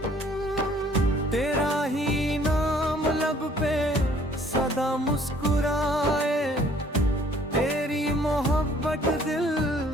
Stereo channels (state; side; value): normal; both; correlation 0.58